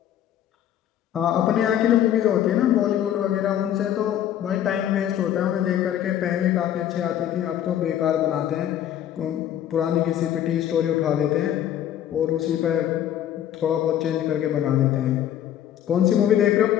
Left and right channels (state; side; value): quieter; right; 10.9 dB